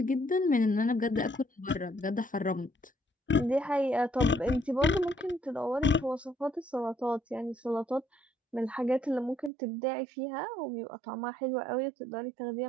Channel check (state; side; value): drops out; left; at 9.5 s